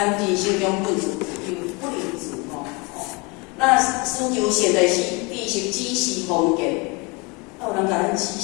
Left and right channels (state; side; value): quieter; right; 28.4 dB